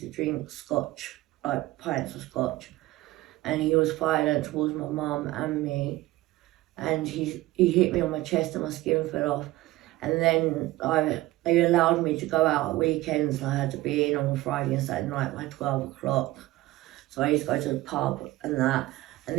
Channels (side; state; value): left; quieter; 17.8 dB